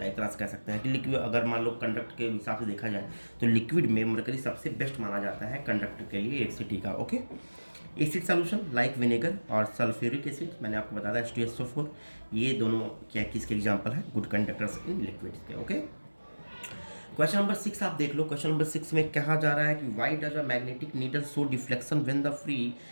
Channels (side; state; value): both; inverted; correlation -1.00